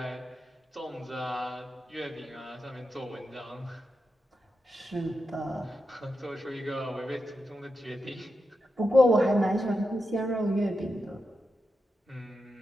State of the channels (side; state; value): both; normal; correlation 0.87